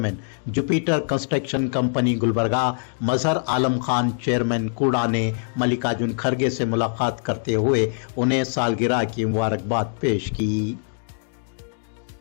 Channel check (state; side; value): silent; right; digital silence